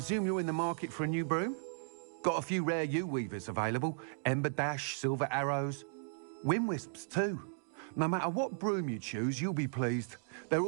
you're in the market for a new broom? Got a few rare U-weavers available. Ember Dash, Silver Arrows. Wind Wisps too. No matter what broom you choose, you'll be pleased. They're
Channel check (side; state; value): left; silent; digital silence